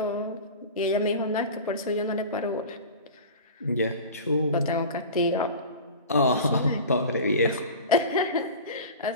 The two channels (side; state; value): both; inverted; correlation -0.33